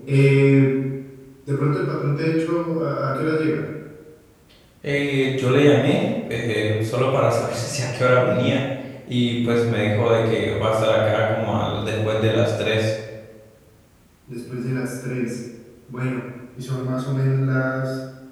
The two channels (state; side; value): identical; both; correlation 1.00